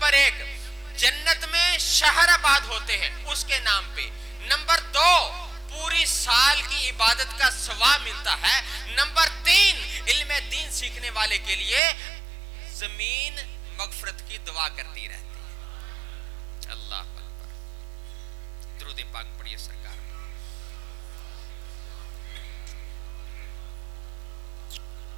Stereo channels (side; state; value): left; drops out; at 11.8 s